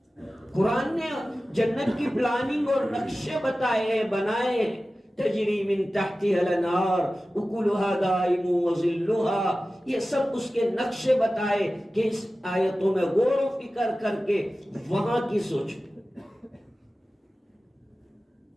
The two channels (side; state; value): both; normal; correlation 0.96